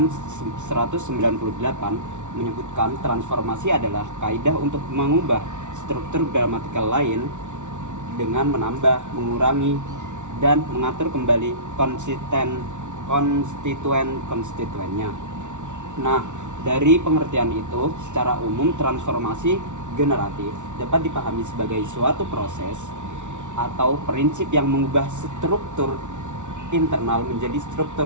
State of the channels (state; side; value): late; left; 0.85 ms